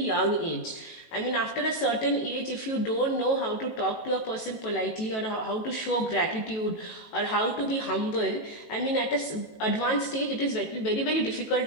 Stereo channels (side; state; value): right; late; 18 ms